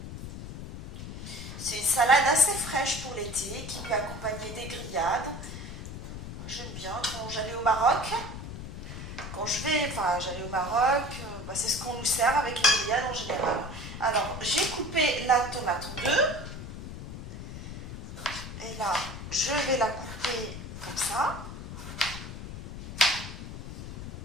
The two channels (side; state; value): left; noise; rumble, 9 dB below the sound